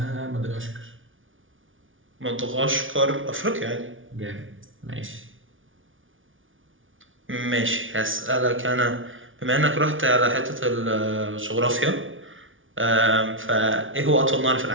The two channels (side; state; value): left; late; 0.57 ms